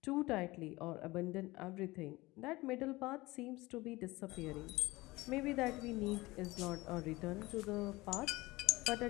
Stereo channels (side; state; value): right; quieter; 20.7 dB